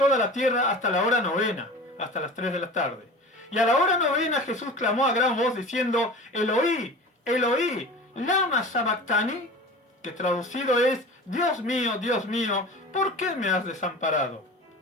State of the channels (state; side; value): normal; both; correlation 0.36